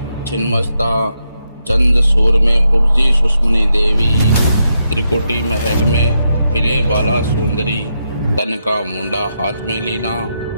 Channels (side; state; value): both; inverted; correlation -0.83